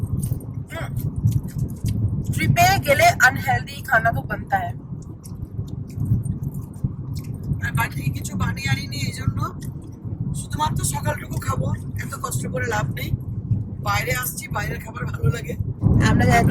ट्रिपे गेले अनहेल्दी खाना तो बनता है। আর বাড়ি কিছু বানিয়ে আনিনি, এই জন্য শুধুমাত্র সকালটুকু খাবো, এত কষ্ট করে লাভ নেই। বাইরে আসছি, বাইরের খাবার ভালো লাগে। আমরা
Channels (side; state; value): both; identical; correlation 1.00